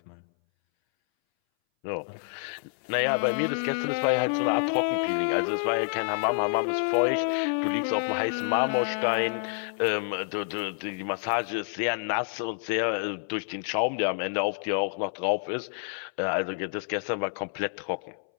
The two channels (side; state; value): right; silent; 59 dB below the other